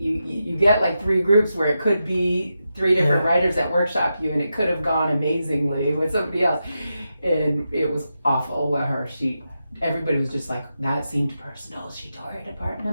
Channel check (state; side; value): inverted; both; correlation -0.88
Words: get like 3 groups where it could be 3 different writers that workshop you, and it could have gone amazingly with somebody else. And it was awful with her. Everybody was just like, that seemed personal. She tore it apart. And